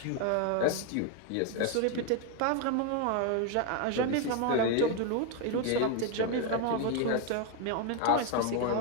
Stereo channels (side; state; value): both; different; correlation 0.01